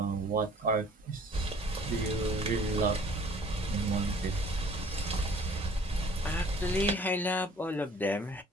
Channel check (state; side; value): normal; both; correlation 0.53